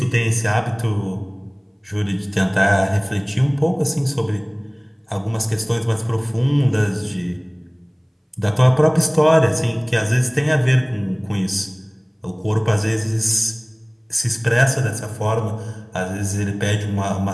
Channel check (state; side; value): identical; both; correlation 1.00